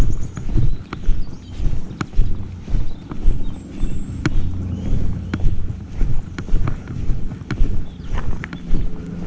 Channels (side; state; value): both; identical; correlation 1.00